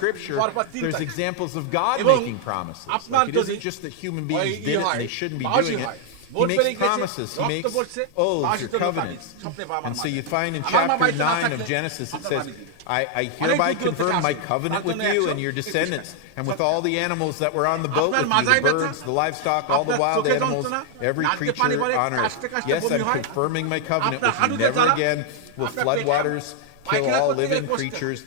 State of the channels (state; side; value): different; both; correlation 0.00